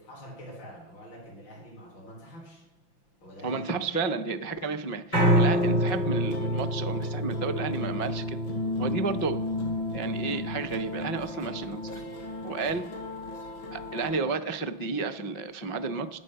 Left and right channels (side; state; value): right; late; 5.9 ms